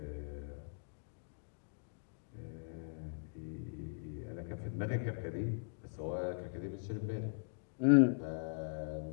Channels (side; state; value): right; silent; digital silence